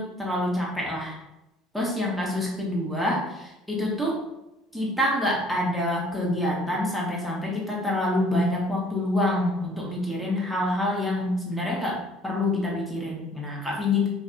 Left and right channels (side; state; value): both; normal; correlation 0.57